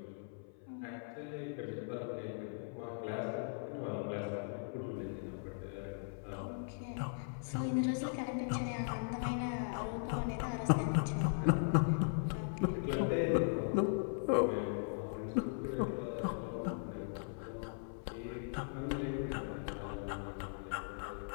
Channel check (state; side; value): silent; right; 52 dB below the other